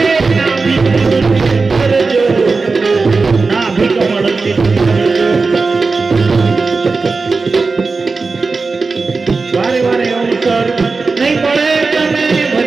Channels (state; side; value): quieter; left; 4.1 dB